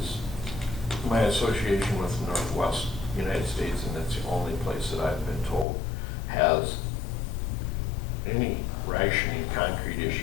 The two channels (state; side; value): drops out; right; at 5.7 s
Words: my association with the Northwest United States, and that's the only place that I've been told, has any rationing concrete